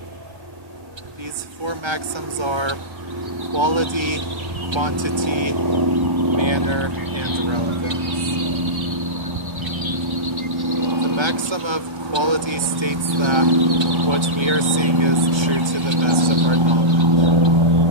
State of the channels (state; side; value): late; left; 1.3 ms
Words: These four maxims are quality, quantity, manner, and relevance. The maxim of quality states that what we are saying is true to the best of our knowledge.